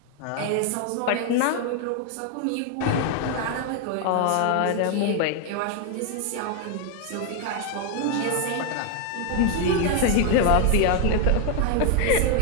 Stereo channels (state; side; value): different; both; correlation 0.00